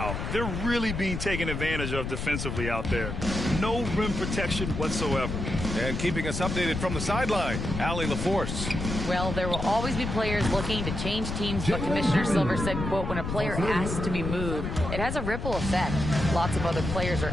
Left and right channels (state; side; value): noise; left; rumble, 4 dB below the sound